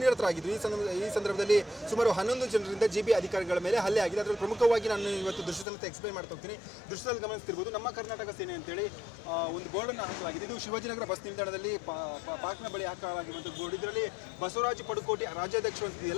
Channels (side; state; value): right; drops out; at 5.7 s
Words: ನಿರತರಾಗಿದ್ದರು. ಈ ಸಂದರ್ಭದಲ್ಲಿ ಸುಮಾರು 11 ಜನರಿಂದ ಜಿಬಿ ಅಧಿಕಾರಿಗಳ ಮೇಲೆ ಹಲ್ಲೆ ಆಗಿದೆ. ಅದರಲ್ಲಿ ಪ್ರಮುಖವಾಗಿ ನಾನು ಇವತ್ತು ದೃಶ್ಯ ಸಮೇತ ಎಕ್ಸ್ಪ್ಲೈನ್ ಮಾಡ್ತಾ ಹೋಗ್ತೀನಿ. ದೃಶ್ಯದಲ್ಲಿ ಗಮನಿಸ್ತಿರ್ಬೋದು, ನಮ್ಮ ಕರ್ನಾಟಕ ಸೇನೆ ಅಂತೇಳಿ ಒಂದು ಬೋರ್ಡನ್ನು ಹಾಕಲಾಗಿದೆ. ಇದು ಶಿವಾಜಿನಗರ ಬಸ್ ನಿಲ್ದಾಣದಲ್ಲಿ ಪಾರ್ಕ್ನ ಬಳಿ ಹಾಕಲಾಗಿರುವಂಥ ಬೋರ್ಡ್. ಇದರಲ್ಲಿ ಬಸವರಾಜ ಪಡುಕೋಟಿ ರಾಜ್ಯಾಧ್ಯಕ್ಷರು